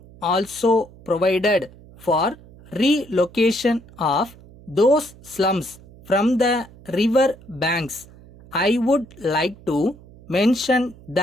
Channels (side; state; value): right; noise; hum, 22 dB below the sound